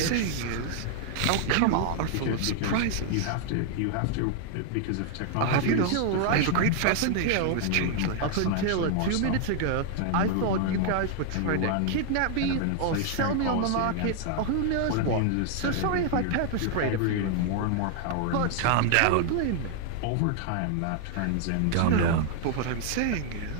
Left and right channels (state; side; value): different; both; correlation 0.00